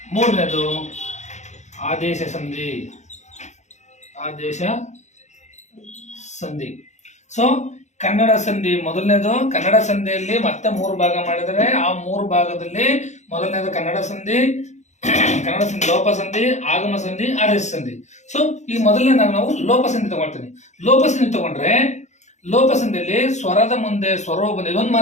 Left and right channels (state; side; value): late; right; 0.34 ms